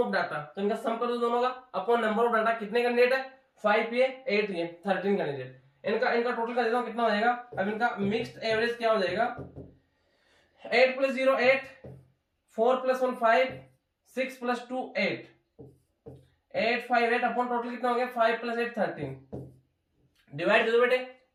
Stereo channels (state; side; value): identical; both; correlation 1.00